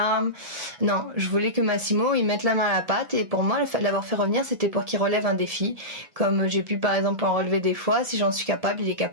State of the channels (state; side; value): late; left; 1.7 ms